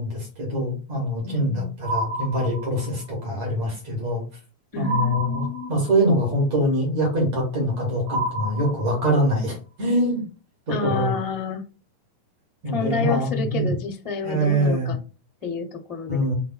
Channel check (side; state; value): left; late; 8.6 ms